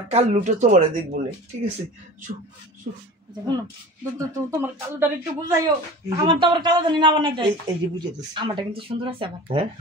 কাল্লুটা তোমারে দেখবো না ঠিক আছে তোমার কালোটা একটু বুঝাইও আমার তো আবার কালো জানি না বানাই দেয় এই যে বুঝে দিচ্ছি আমারটা কিন্তু সুন্দর আছে আবার হ্যাঁ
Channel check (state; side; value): normal; both; correlation 0.37